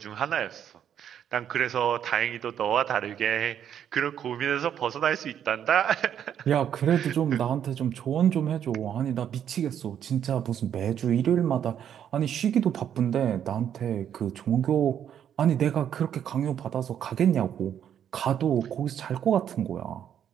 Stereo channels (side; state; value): left; quieter; 9.4 dB